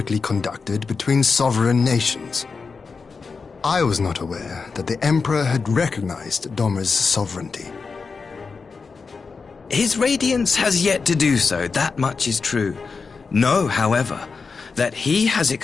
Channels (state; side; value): quieter; right; 4.8 dB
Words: conducted between sovereign nations. I was not aware that the Emperor had recognized Dorma's sovereignty. His Radiance has yet to do so, that much is true. Know, however, that he has